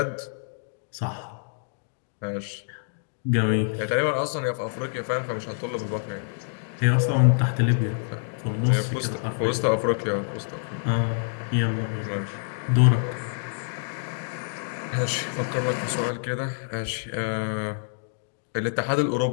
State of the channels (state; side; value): silent; right; digital silence